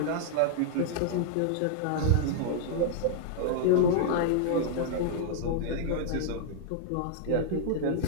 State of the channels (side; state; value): both; different; correlation -0.01